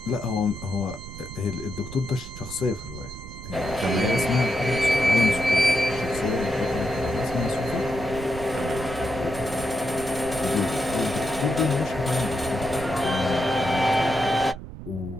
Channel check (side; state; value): right; noise; rumble, 12 dB below the sound